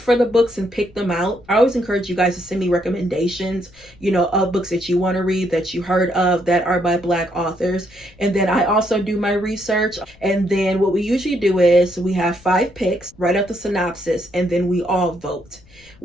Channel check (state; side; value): noise; left; rumble, 26 dB below the sound